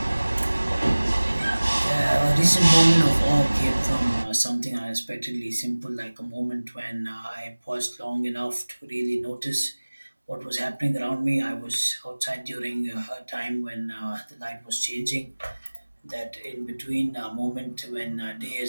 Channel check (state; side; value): inverted; both; correlation -1.00